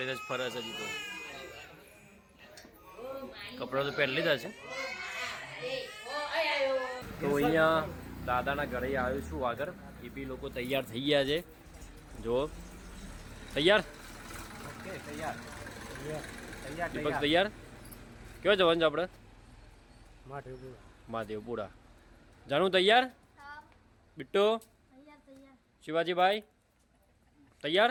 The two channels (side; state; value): both; identical; correlation 1.00